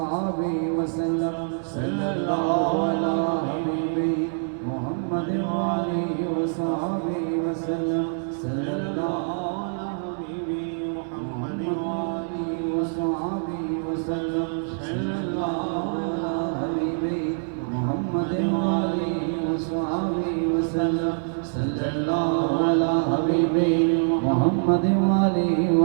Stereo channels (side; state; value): left; silent; 62 dB below the other